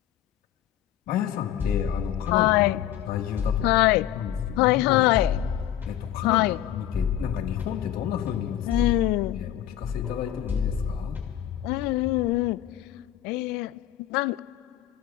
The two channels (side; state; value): right; quieter; 11.8 dB